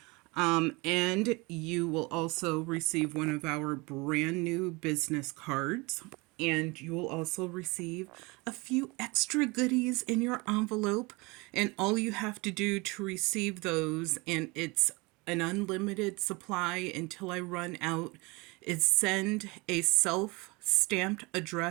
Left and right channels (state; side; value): quieter; left; 25.8 dB